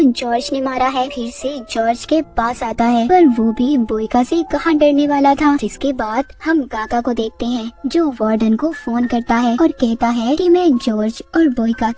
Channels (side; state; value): both; identical; correlation 1.00